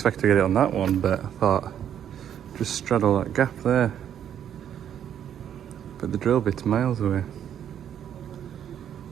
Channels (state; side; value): quieter; left; 9.6 dB